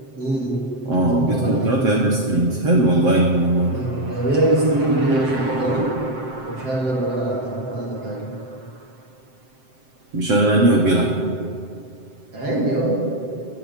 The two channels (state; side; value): late; left; 7.7 ms